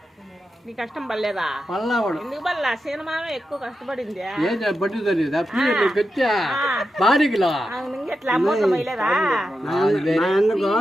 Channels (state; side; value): normal; both; correlation 0.89